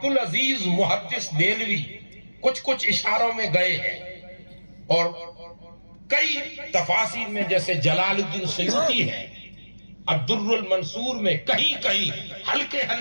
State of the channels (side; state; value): both; inverted; correlation -1.00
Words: العزیز محدث دہلوی کچھ اشاروں میں گئے ہیں، اور کئی تفاسیر میں جیسے جلال الدین سیوطی ہے الدر المنصور میں کہیں ہلکے